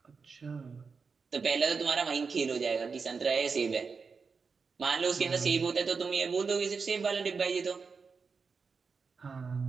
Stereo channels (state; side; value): quieter; left; 5.1 dB